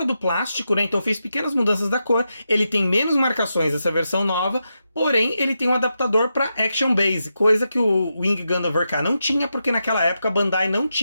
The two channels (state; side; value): inverted; both; correlation -0.86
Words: do plástico, né? Então fez pequenas mudanças da cor. Ele tem menos marcações essa versão nova, porém ele tem um adaptador para Action Base, coisa que o Wing Gundam Verka não tinha, porque naquela época a Bandai não